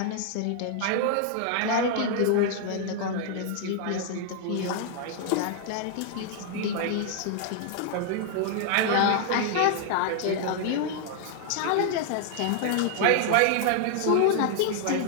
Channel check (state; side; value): different; both; correlation 0.00